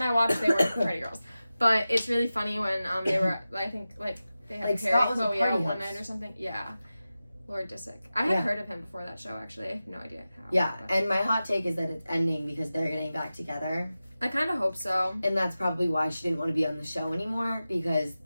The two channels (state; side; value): inverted; both; correlation -0.94